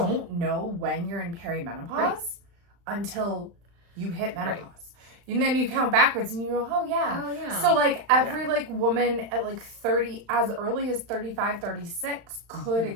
know when you're in perimenopause until you hit menopause. Right. And then you count backwards and you go, oh yeah. So every woman at 30, as early as 35, 36 could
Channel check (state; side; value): late; left; 35 ms